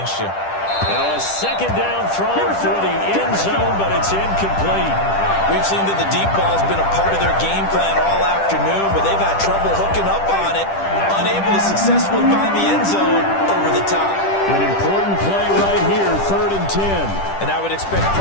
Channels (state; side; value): late; right; 10 ms